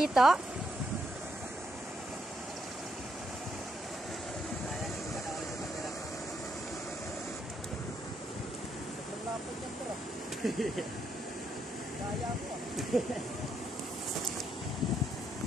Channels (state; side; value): normal; both; correlation 0.77